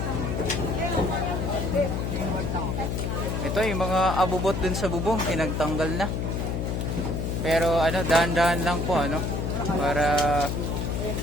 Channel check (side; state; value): left; noise; hum, 1 dB below the sound